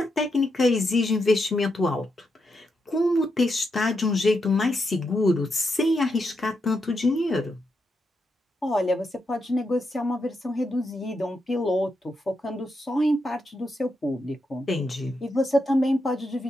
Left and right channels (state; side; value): normal; both; correlation 0.84